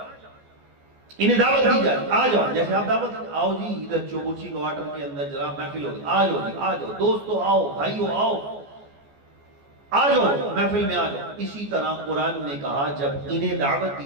انہیں دعوت دی جاتی، آ جاؤ، جیسے آپ دعوت آؤ جی ادھر چوبوچی کوارٹر کے اندر جناب محفل ہوگی، آ جاؤ جی، آ جاؤ دوستو، آؤ بھائیو، آؤ آ جاؤ محفل میں آ جاؤ۔ اسی طرح قرآن نے کہا جب انہیں دعوت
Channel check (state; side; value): late; left; 14 ms